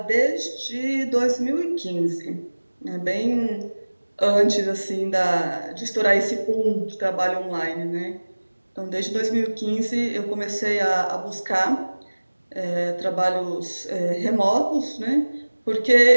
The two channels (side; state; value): both; inverted; correlation -1.00